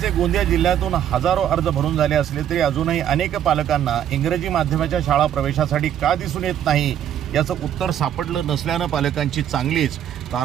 गोंदिया जिल्ह्यातून हजारो अर्ज भरून झाले असले तरी अजूनही अनेक पालकांना इंग्रजी माध्यमाच्या शाळा प्रवेशासाठी का दिसून येत नाही याचं उत्तर सापडलं नसल्यानं पालकांची चांगलीच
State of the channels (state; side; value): quieter; left; 10.3 dB